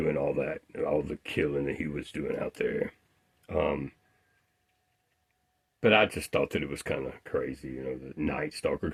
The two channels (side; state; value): both; identical; correlation 1.00